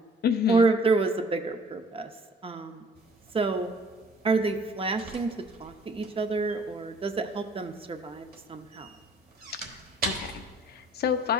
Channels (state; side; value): normal; both; correlation 0.55